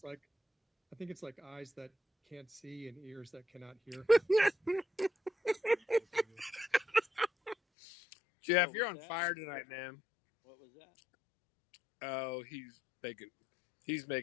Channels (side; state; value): right; drops out; at 7.6 s